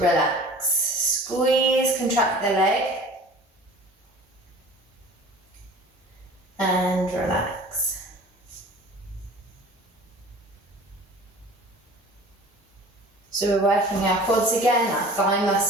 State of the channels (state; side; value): normal; both; correlation 0.43